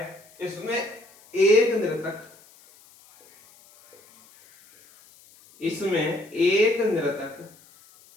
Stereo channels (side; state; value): left; noise; hiss, 27 dB below the sound